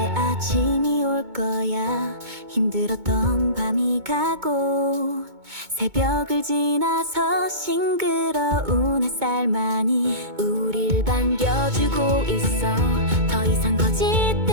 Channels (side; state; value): left; late; 2.2 ms